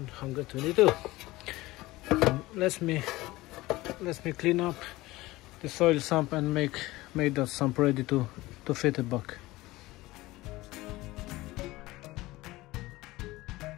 Let me clean up the oil sump and make that sump ready to fit it back.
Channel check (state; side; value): quieter; right; 19.2 dB